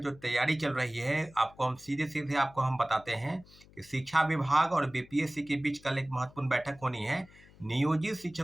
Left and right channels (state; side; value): noise; left; hum, 24 dB below the sound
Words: तैयारी चल रही है, आपको हम सीधे-सीधे आपको हम बताते हैं कि शिक्षा विभाग और बीपीएससी के बीच कल एक महत्वपूर्ण बैठक होनी है। नियोजित